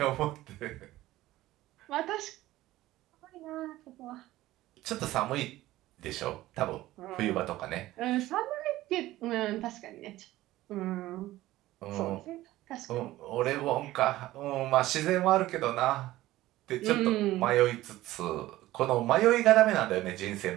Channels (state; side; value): quieter; left; 16.3 dB